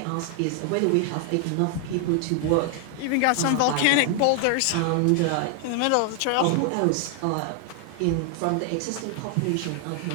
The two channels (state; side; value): different; both; correlation 0.00